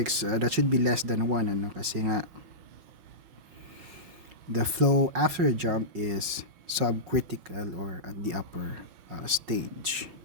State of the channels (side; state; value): left; late; 5.5 ms